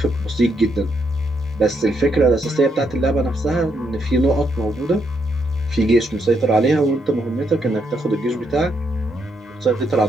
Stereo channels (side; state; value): both; normal; correlation 0.77